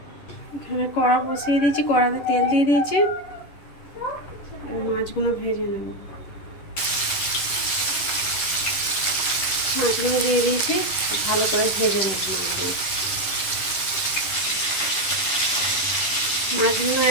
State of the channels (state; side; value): late; right; 11 ms